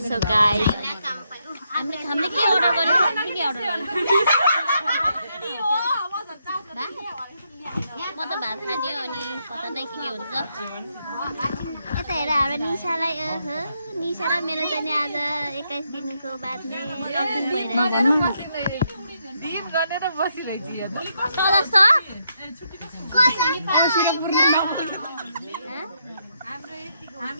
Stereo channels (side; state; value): both; inverted; correlation -0.78